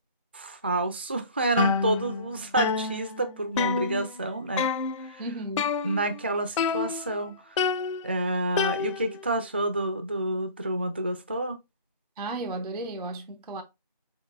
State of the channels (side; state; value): both; inverted; correlation -0.43